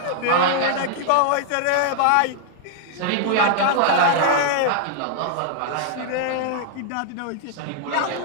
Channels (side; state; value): both; different; correlation -0.01